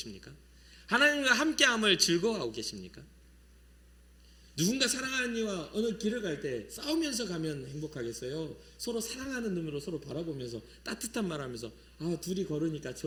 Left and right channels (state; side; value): identical; both; correlation 1.00